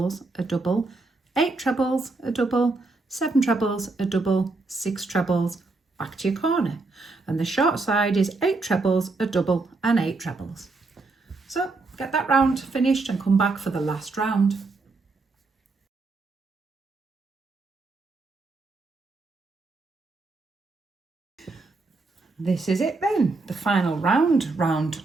a double, 8 trebles, a double, 7 trebles, a double, 6 trebles, back to your corner. And the short side is 8 trebles, a double, and 8 trebles. So get that round finished and come back for the last round. This is it then, the final round,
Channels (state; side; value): quieter; left; 3.6 dB